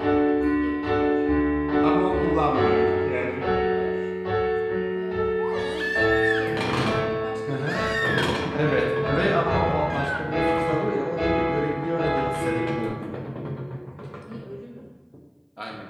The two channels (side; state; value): both; identical; correlation 1.00